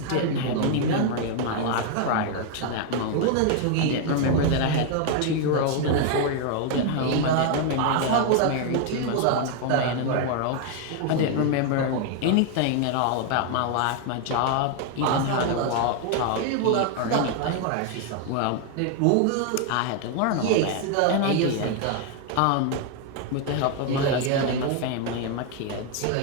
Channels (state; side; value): different; both; correlation 0.00